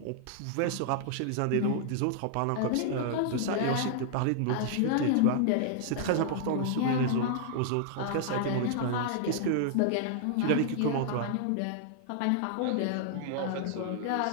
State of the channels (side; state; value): both; different; correlation -0.01